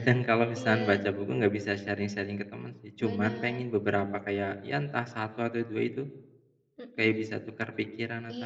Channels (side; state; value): both; identical; correlation 1.00